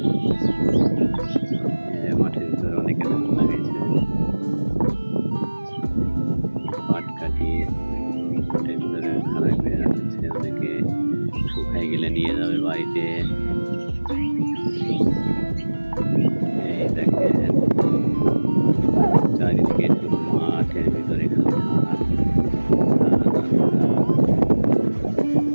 এই যে মাঠের ভিতরে অনেকে ধান লাগাইছে। পাট কাটিয়ে মাঠের ভিতরে খারাপ করে রাখছে, অনেকে শুকাই গেলে নিয়ে যাবে বাড়িতে। এই দেখেন চারিদিকে শুধু মাঠের ভিতরে খালি ধান।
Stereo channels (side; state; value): both; inverted; correlation -1.00